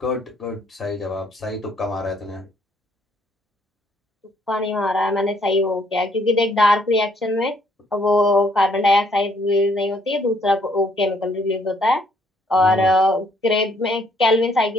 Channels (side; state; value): both; normal; correlation 0.67